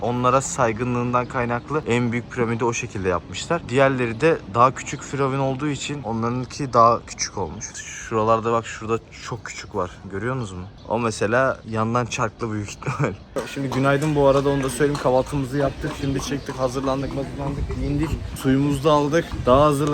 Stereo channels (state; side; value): identical; both; correlation 1.00